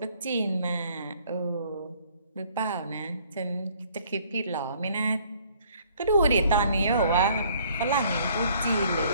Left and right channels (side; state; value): both; inverted; correlation -0.60